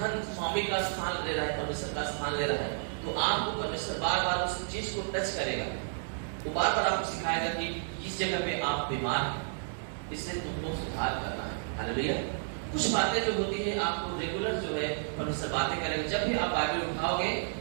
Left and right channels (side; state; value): left; silent; digital silence